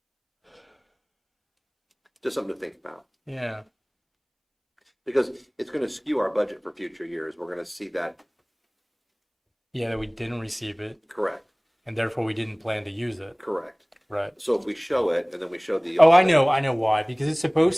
Just something to think about. Yeah. Because it's going to skew our budget for future years. We're going to see that. Yeah, that we didn't receive it, Correct. and therefore we didn't plan to use it. Correct. Right. So if we show it and then we show the. Oh, I know why. Because it's supposed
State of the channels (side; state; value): both; identical; correlation 1.00